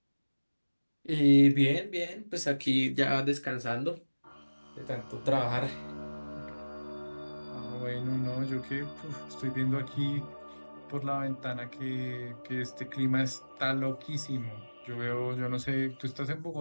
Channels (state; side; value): inverted; both; correlation -1.00